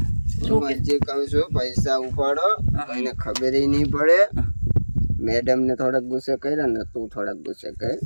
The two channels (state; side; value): inverted; both; correlation -1.00